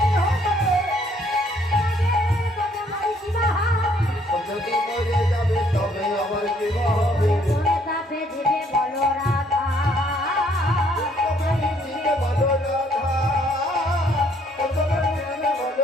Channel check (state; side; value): normal; both; correlation 0.65